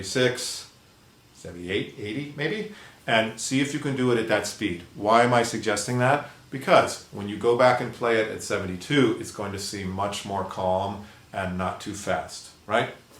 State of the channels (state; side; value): identical; both; correlation 1.00